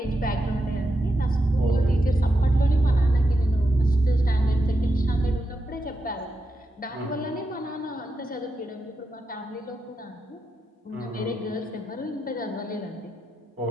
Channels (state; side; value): normal; both; correlation 0.86